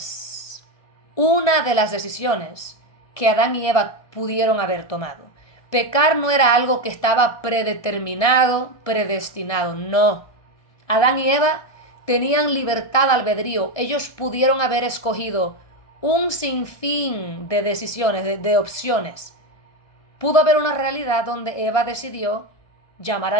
que Adán y Eva pudieron haber tomado. Pecar no era algo que estaba predeterminado, predestinado, no. Adán y Eva tenían libertad albedrío, ellos pudieron haber escogido un sinfín de decisiones, de opciones. Pudo haber una realidad donde Eva decidió llamar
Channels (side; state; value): right; late; 1.5 ms